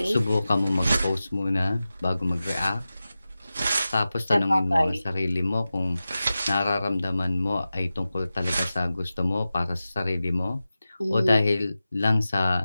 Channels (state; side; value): inverted; both; correlation -0.94